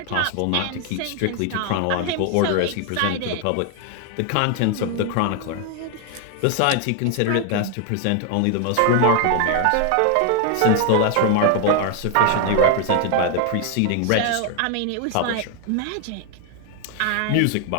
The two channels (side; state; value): both; different; correlation 0.01